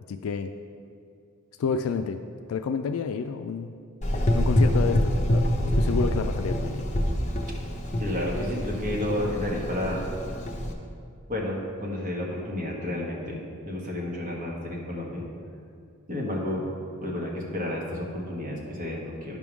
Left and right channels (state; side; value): normal; both; correlation 0.66